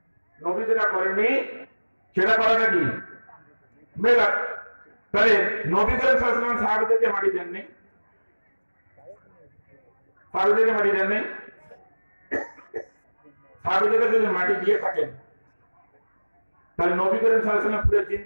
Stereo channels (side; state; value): both; inverted; correlation -1.00